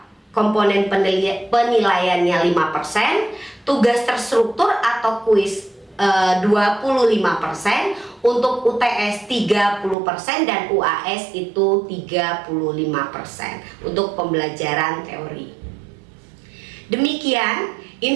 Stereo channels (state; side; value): drops out; left; at 10.0 s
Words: komponen penilaiannya 5%, tugas terstruktur atau kuis 25%, untuk UTS 30% dan UAS itu 35% untuk pembelajaran teori. Demikian